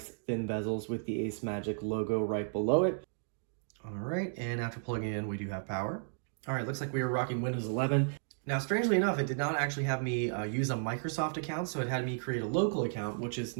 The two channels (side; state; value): left; silent; digital silence